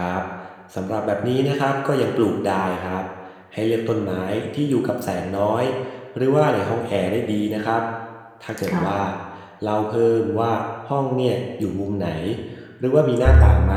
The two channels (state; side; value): identical; both; correlation 1.00